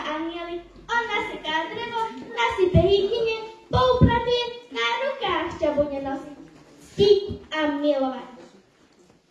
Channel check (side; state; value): both; identical; correlation 1.00